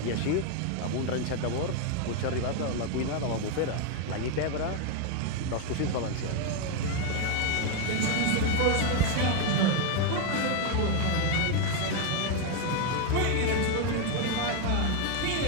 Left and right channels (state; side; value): different; both; correlation 0.01